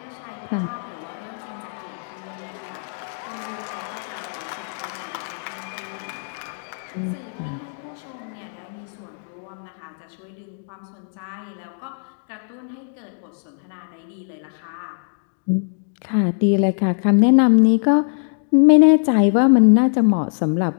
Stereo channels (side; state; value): right; silent; digital silence